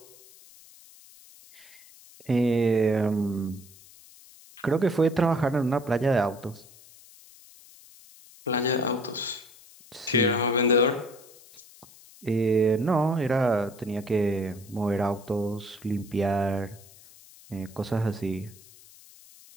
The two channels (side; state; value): left; noise; hiss, 23 dB below the sound